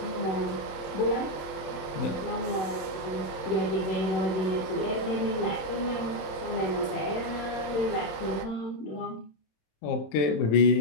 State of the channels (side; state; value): right; late; 26 ms